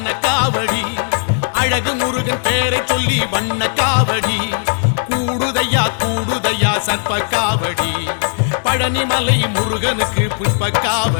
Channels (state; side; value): silent; right; 68 dB below the other